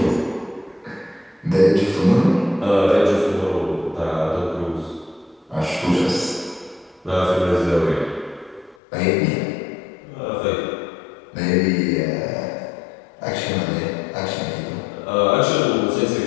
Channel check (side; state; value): right; drops out; at 8.8 s